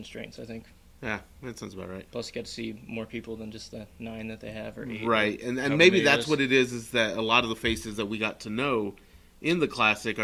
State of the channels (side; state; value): both; identical; correlation 1.00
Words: I think. Yeah, that sounds about right. Plus, you get to see more people than just the 9 that they have or 8. Right, and maybe that's what it is that a lot of the faces that we got to know in the Classic